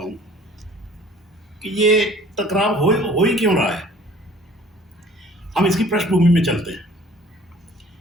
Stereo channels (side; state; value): both; normal; correlation 0.52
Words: कि ये टकराव हो ही क्यों रहा है। हम इसकी पृष्ठभूमि में चलते हैं।